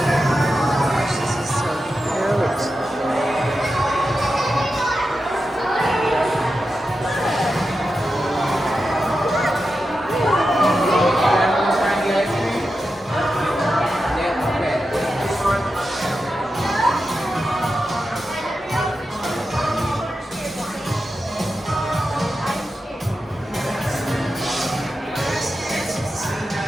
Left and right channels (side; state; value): both; normal; correlation 0.90